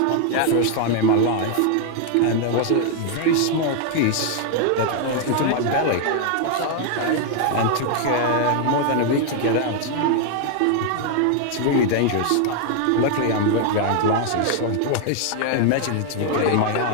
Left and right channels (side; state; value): both; different; correlation 0.00